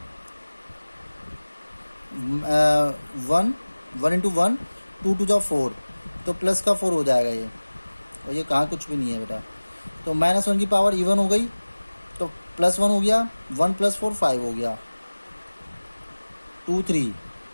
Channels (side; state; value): both; inverted; correlation -1.00